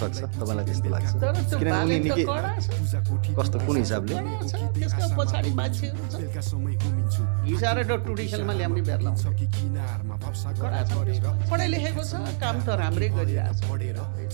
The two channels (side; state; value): left; silent; digital silence